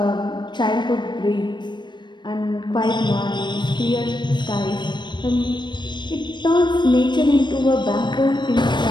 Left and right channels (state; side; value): late; right; 0.22 ms